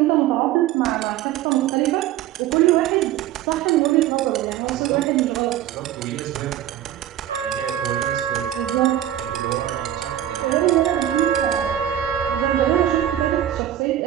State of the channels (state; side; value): quieter; left; 12.1 dB